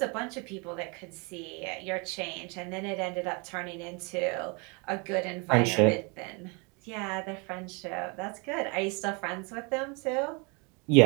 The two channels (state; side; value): quieter; left; 31.4 dB